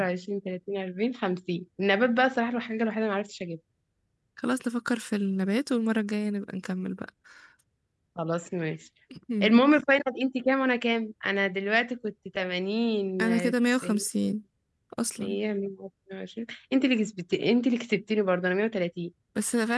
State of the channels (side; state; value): both; identical; correlation 1.00